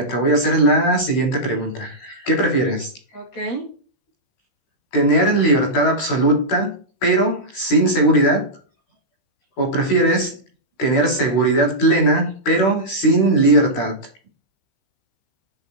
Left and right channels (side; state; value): right; late; 15 ms